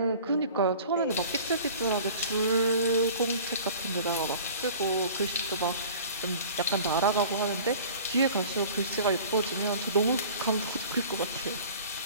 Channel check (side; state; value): both; inverted; correlation -0.44